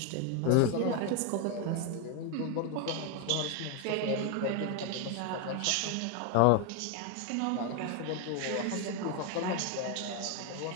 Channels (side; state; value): both; different; correlation 0.01